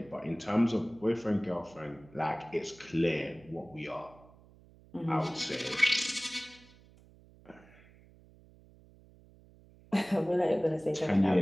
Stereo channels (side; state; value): right; noise; hum, 25 dB below the sound